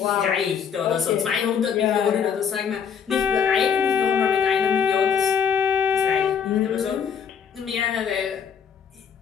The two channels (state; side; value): quieter; right; 7.2 dB